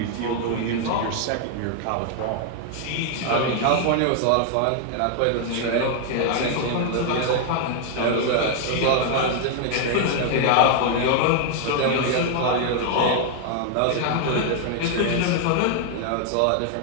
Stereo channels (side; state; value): both; different; correlation 0.00